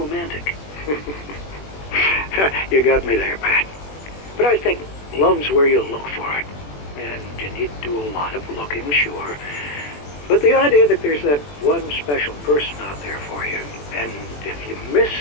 You got me there, Pat. But I think love's where you look for it. And you need to do a lot of looking, sure. But the idea that there's that one special person out there for you, and if you miss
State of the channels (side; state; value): right; late; 21 ms